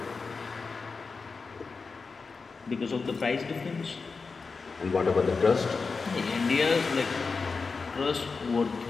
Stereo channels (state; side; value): quieter; right; 4.6 dB